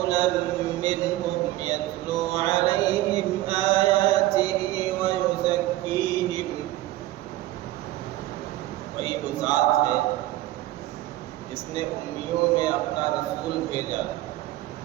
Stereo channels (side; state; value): left; quieter; 16.1 dB